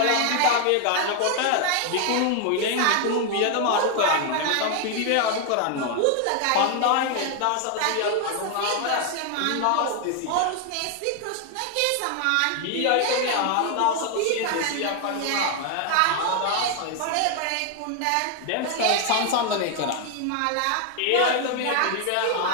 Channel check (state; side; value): different; both; correlation 0.01